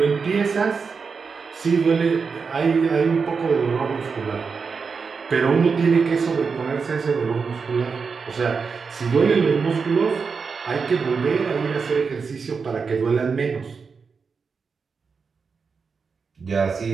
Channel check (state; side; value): quieter; left; 5.3 dB